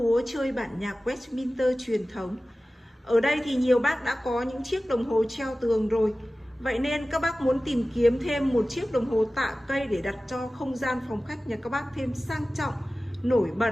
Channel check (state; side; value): normal; both; correlation 0.96